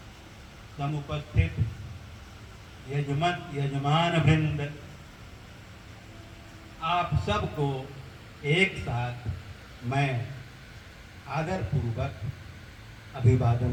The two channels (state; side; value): identical; both; correlation 1.00